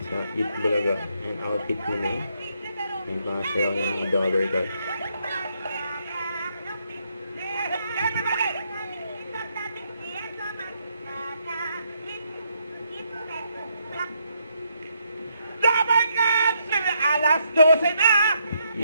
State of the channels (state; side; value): inverted; both; correlation -0.76